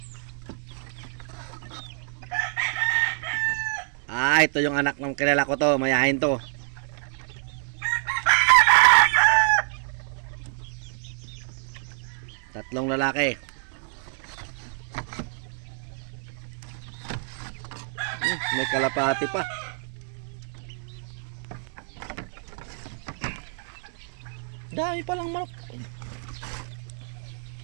Ah, ito yung anak ng kilala ko to. Mayahin to. Tatlong lalaki. May kalapati pa. Dami palang manok.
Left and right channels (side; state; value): left; silent; 60 dB below the other